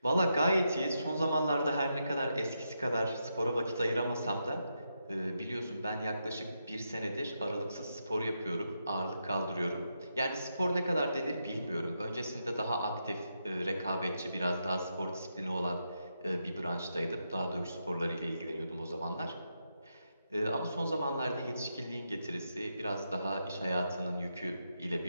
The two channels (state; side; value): inverted; both; correlation -0.84